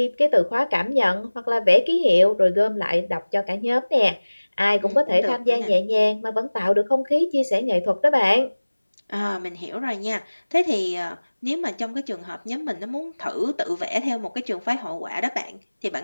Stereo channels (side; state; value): both; inverted; correlation -1.00